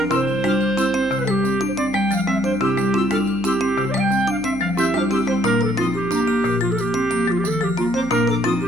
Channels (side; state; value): right; noise; hum, 16 dB below the sound